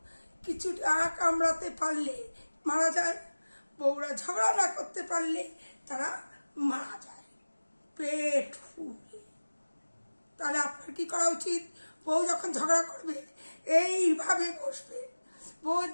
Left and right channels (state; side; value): inverted; both; correlation -1.00